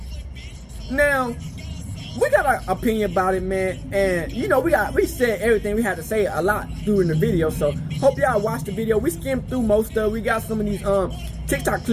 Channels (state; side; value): identical; both; correlation 1.00